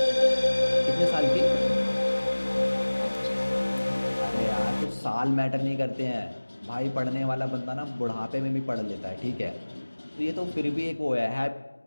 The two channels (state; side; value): inverted; both; correlation -1.00